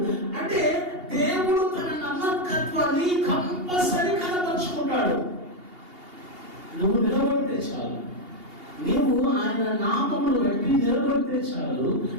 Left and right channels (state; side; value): late; left; 2.8 ms